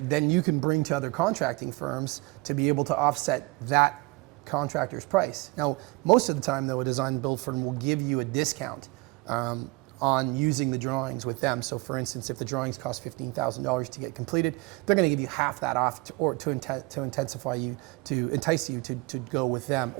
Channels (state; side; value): quieter; left; 24.9 dB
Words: then you can bring to other contracting firms to be able to offset that contractor's price. Now, most of the time though, a design build firm will give you a discount on using the drawings with them. So for instance, if the drawings cost $15,000 to get completed, they're going to give you half that off to entice you to go with them.